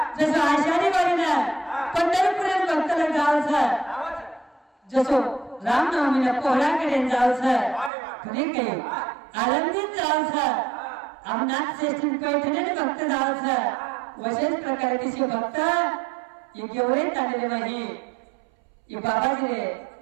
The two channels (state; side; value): drops out; left; at 7.9 s